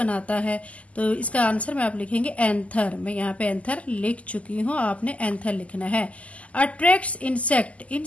है। तो इसका आंसर में आप लिखेंगे एंथर। मैं यहाँ पे एंथर लिख चुकी हूँ, आपने एंथर लिखना है। अट्रैक्ट्स इंसेक्ट,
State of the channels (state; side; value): late; right; 0.067 ms